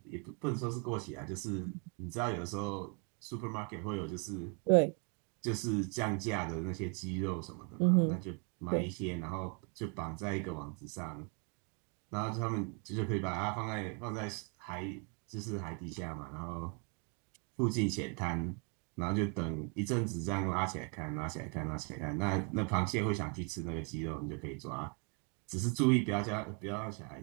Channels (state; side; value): quieter; left; 33.6 dB